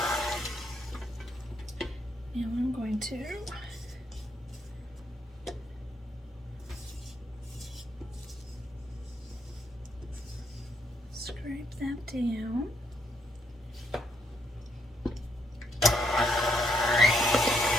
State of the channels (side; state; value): both; normal; correlation 0.73